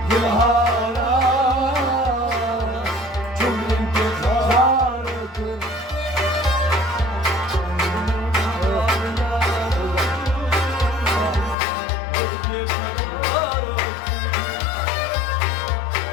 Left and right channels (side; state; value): right; drops out; at 11.6 s